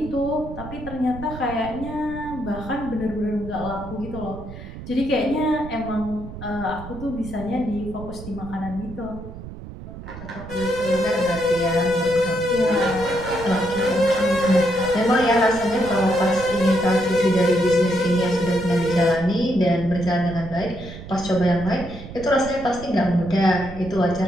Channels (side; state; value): right; noise; rumble, 12 dB below the sound